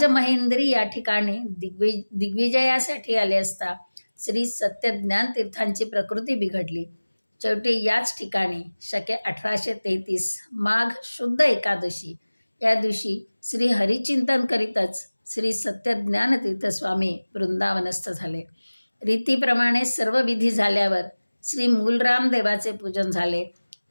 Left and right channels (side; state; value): both; inverted; correlation -1.00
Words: या ठिकाणी दिग्विजयासाठी आले असता श्री सत्यज्ञान तीर्थांची प्रकृती बिघडली. शेवटी याच ठिकाणी शके 1833 माघ शुद्ध एकादशी या दिवशी श्री हरिचिंतन करीतच श्री सत्यज्ञान तीर्थस्वामी वृंदावनस्थ झाले. रीतीप्रमाणे सर्व विधी झाल्यावर श्री मूलराम देवाचे पूजन झाले.